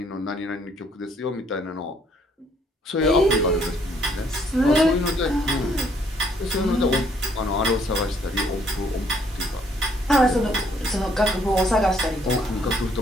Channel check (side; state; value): both; normal; correlation 0.66